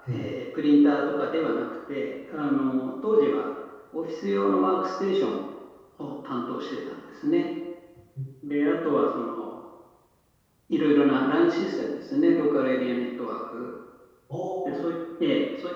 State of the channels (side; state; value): both; identical; correlation 1.00